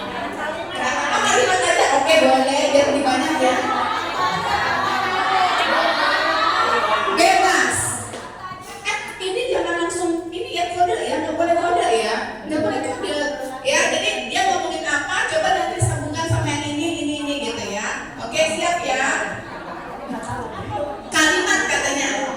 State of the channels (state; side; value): identical; both; correlation 1.00